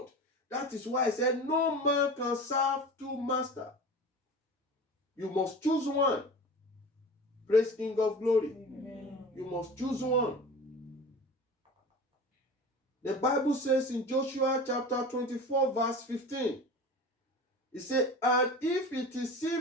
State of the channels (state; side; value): normal; both; correlation 0.35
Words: That is why I said no man can serve two masters. You must choose one. Praise King of Glory. Amen. You must choose one. The Bible says in Joshua chapter 24 verse 15, it says, and if it